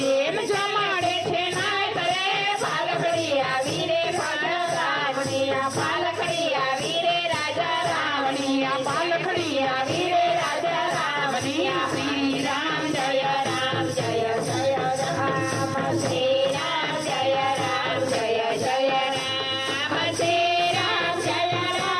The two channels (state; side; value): identical; both; correlation 1.00